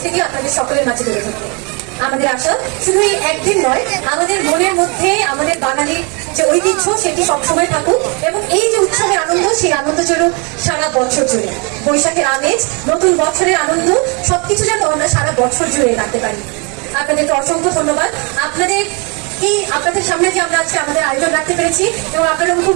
আপনাদের সকলের মাঝে তুলে ধরতে। আমাদের আশা শুধু এই একদিন নয়, আমাদের মনের মধ্যে আমাদের বাঙালির যে ঐতিহ্য সেটি সবসময় থাকুক এবং এই যে উৎসবের আনন্দ, সেই আনন্দ চলুক সারা বছর জুড়ে। বৈশাখের আমেজ, নতুন বছরের আনন্দ সবকিছু যেন আমরা সারা বছর জুড়ে রাখতে পারি। আপনাদেরকে অসংখ্য ধন্যবাদ। আপনাদের সামনে যে আমরা আজকে আমাদের আয়োজন রাখতে পেরেছি এবং আপনারা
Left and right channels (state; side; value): quieter; left; 32.7 dB